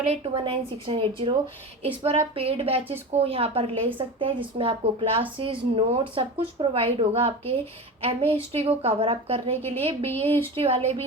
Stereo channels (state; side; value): normal; both; correlation 0.28